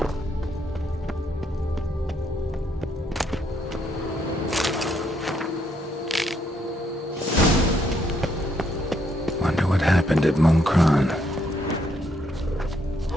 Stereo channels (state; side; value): normal; both; correlation 0.73